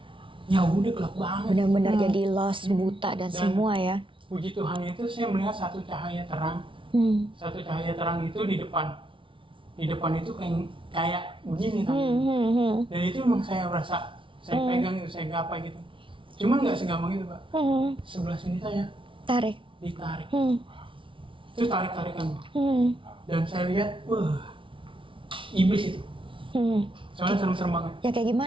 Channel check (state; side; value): late; left; 0.25 ms